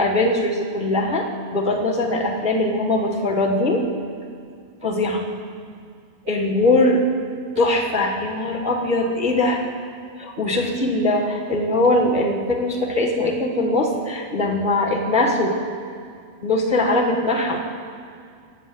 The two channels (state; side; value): late; left; 12 ms